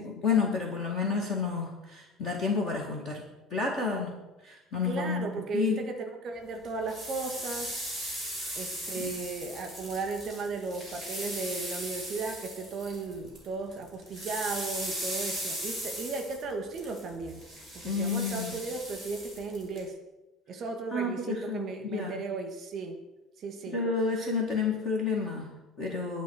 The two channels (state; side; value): normal; both; correlation 0.34